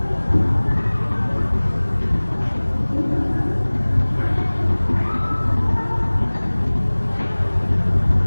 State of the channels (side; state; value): both; inverted; correlation -1.00